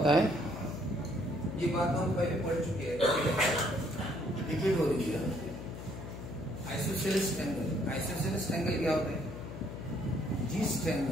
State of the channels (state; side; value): noise; left; hum, 10 dB below the sound